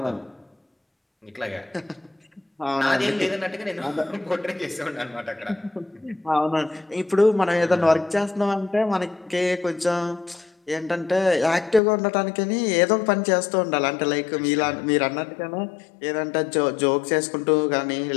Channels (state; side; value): drops out; right; at 11.8 s